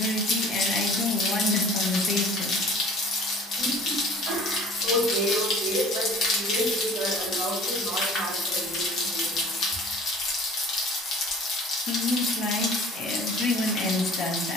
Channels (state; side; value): normal; both; correlation 0.48